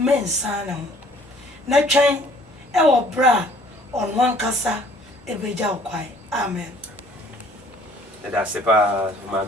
na ho na twen e wo bra on wan kasa ebeja okwai amen. that's pas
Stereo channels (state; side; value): normal; both; correlation 0.56